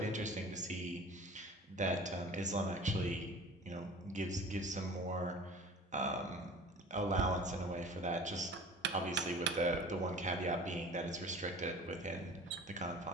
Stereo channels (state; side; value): normal; both; correlation 0.42